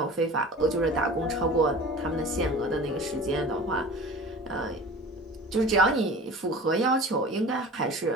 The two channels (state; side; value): normal; both; correlation 0.39